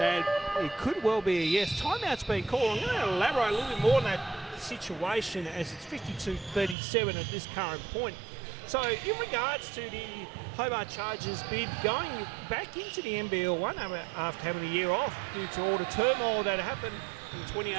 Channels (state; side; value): drops out; left; at 6.8 s